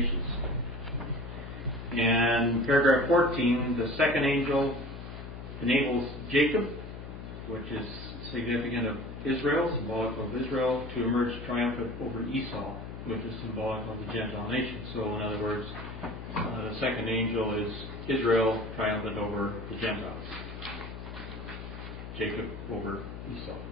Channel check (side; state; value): left; noise; hum, 10 dB below the sound